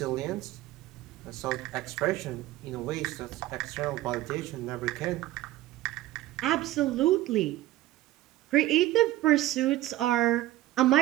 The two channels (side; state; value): left; quieter; 15.6 dB